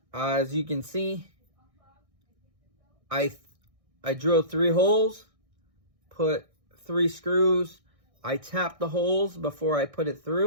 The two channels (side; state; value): left; late; 1.6 ms